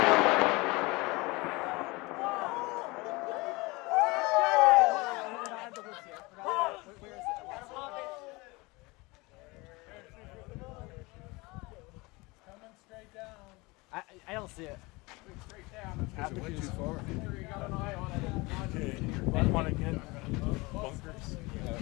I don't see it. Straight down. It went too far. You got an eye on it. Okay. Want to get bunkers?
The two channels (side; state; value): right; quieter; 24.2 dB